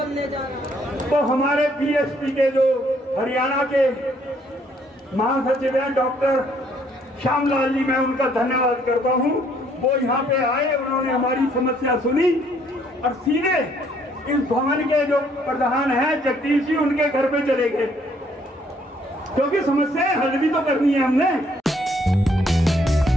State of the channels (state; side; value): normal; both; correlation 0.66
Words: जा रहा है। तो हमारे पीएचपी के जो हरियाणा के महासचिव हैं डॉक्टर श्यामलाल जी, मैं उनका धन्यवाद करता हूं। वो यहाँ पे आए, उन्होंने हमारी समस्या सुनी और सीधे इस भवन के जो प्रधान हैं जगदीश जी, उनके घर पे चले गए, क्योंकि समस्याएं हल भी तो करनी है हमने।